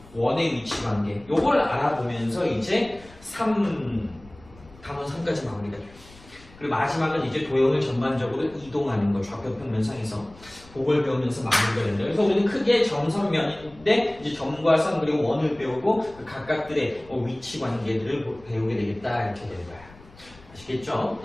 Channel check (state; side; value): noise; left; rumble, 23 dB below the sound